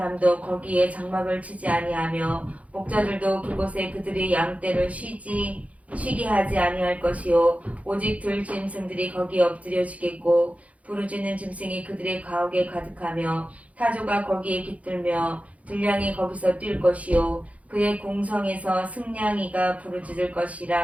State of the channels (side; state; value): left; late; 0.067 ms